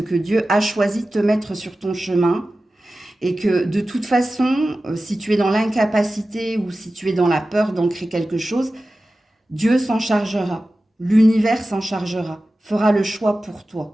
que Dieu a choisi de te mettre sur ton chemin et que de toute façon, si tu es dans l'incapacité ou si tu es dans la peur d'ancrer quelque chose, Dieu s'en chargera, l'univers s'en chargera, fera le choix pour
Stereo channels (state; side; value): normal; both; correlation 0.95